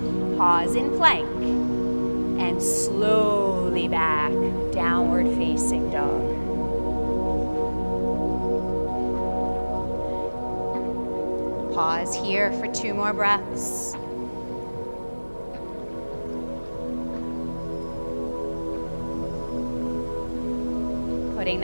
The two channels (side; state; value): both; inverted; correlation -1.00